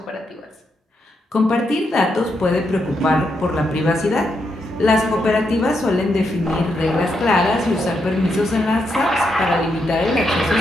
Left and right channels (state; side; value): normal; both; correlation 0.81